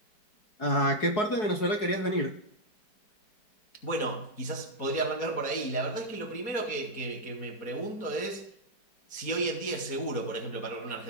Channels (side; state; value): right; late; 4.7 ms